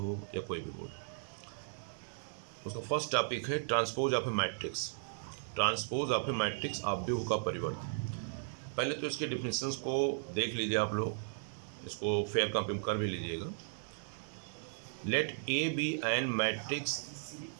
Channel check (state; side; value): silent; left; digital silence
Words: या कोई भी बोर्ड। उसका फर्स्ट टॉपिक है transpose of A matrix. Transpose of A matrix आव्यूह का परिवर्त। पहले तो इसके डिफिनेशंस को देख लीजिए आप लोग, इसको फेयर कॉपी कर भी लीजिएगा। Let A be an matrix,